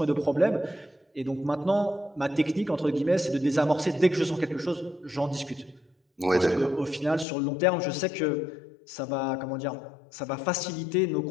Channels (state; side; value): drops out; right; at 7.2 s